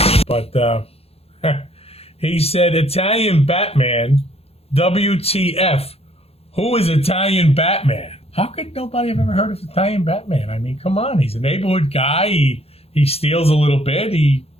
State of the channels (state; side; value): late; right; 0.29 ms